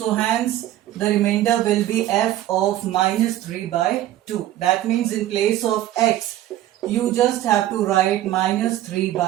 hence the remainder will be f of minus 3 by 2. That means in place of x, you just have to write minus 3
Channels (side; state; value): left; quieter; 13.6 dB